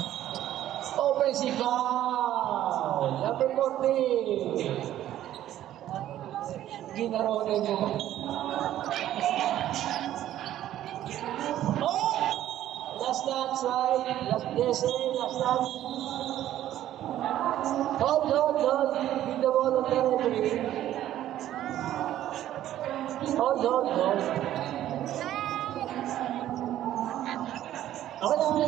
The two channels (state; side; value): quieter; left; 12.6 dB